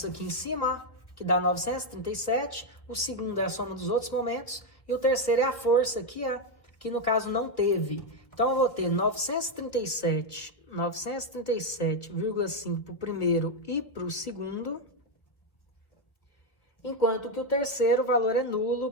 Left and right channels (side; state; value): right; late; 1.7 ms